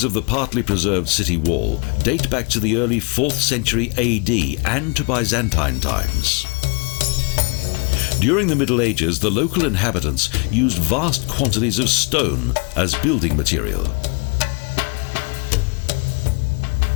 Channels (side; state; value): right; quieter; 33.3 dB